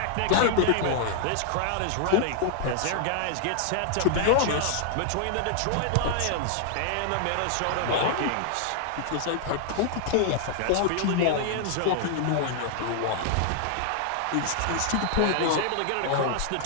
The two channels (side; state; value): both; different; correlation 0.00